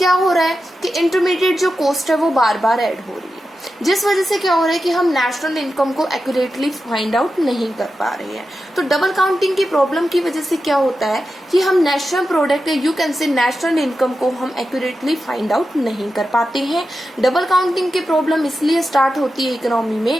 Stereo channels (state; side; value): normal; both; correlation 0.90